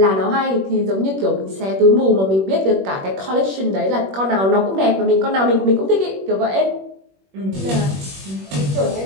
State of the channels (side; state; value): left; late; 21 ms